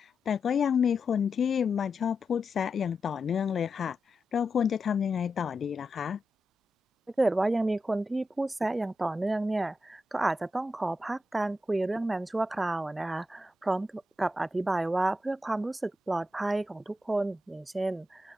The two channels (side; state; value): both; normal; correlation 0.88